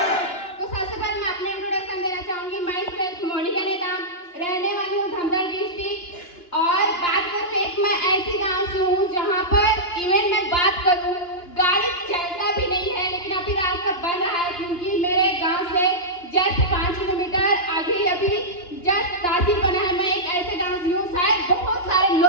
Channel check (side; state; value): right; late; 2.9 ms